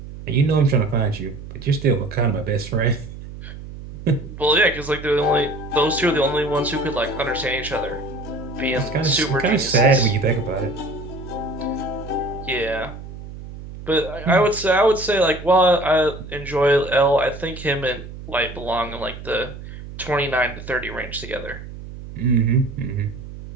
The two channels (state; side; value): noise; right; hum, 12 dB below the sound